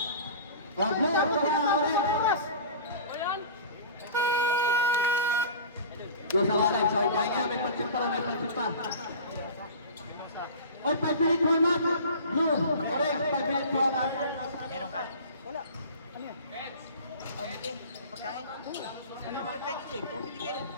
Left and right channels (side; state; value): both; inverted; correlation -0.38